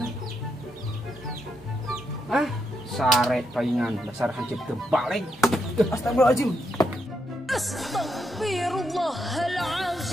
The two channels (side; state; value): both; normal; correlation 0.81